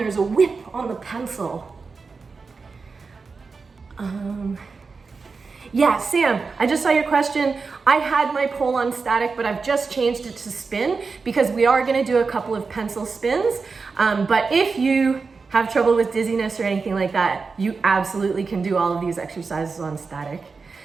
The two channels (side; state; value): left; quieter; 4.6 dB